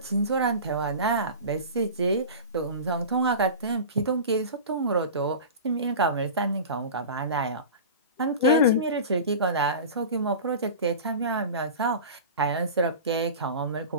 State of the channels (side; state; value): both; inverted; correlation -0.32